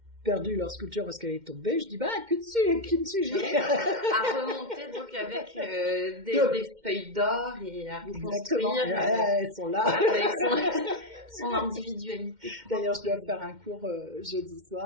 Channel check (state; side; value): late; left; 2.1 ms